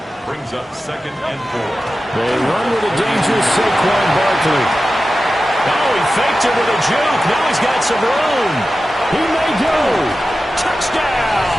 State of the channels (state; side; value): normal; both; correlation 0.94